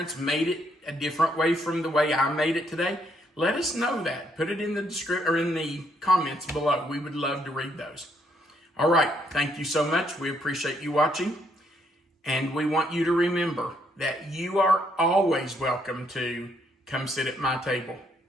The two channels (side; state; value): both; normal; correlation 0.72